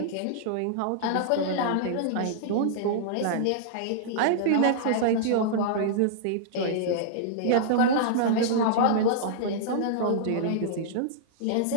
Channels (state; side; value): different; both; correlation -0.02